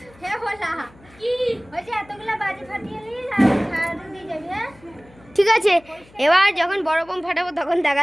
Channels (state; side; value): noise; left; hum, 26 dB below the sound